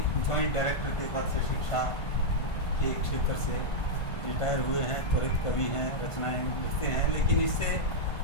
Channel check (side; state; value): right; late; 1.5 ms